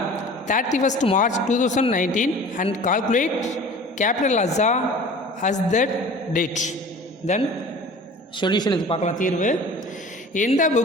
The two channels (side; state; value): both; normal; correlation 0.42